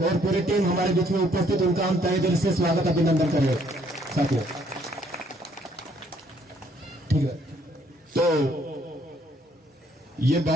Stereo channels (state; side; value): normal; both; correlation 0.66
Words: और पूरी टीम हमारे बीच में उपस्थित, उनका हम तहे दिल से स्वागत अभिनंदन करें साथियों। ठीक है, तो ये